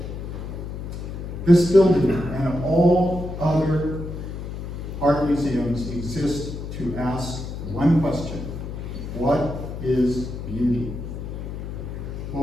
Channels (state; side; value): noise; left; hum, 7 dB below the sound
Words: This building and all other art museums exist to ask one question: what is beauty?